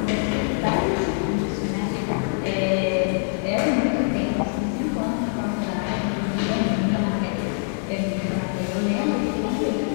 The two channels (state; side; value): silent; right; digital silence